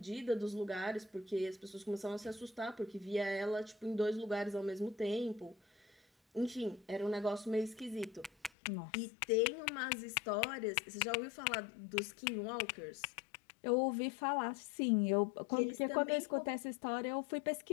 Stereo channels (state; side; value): drops out; right; at 8.5 s